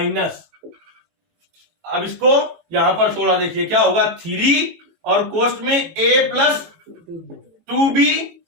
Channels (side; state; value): left; late; 18 ms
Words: अब इसको यहां पर थोड़ा देखिए क्या होगा, 3 और कोष्ट में a प्लस 2b